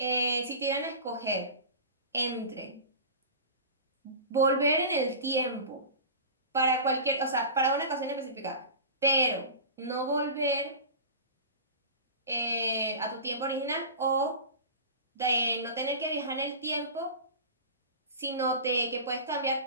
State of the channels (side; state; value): both; inverted; correlation -0.33